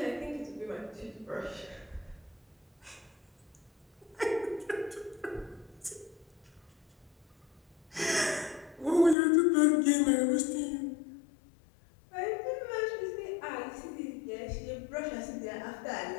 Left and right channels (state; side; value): drops out; right; at 9.2 s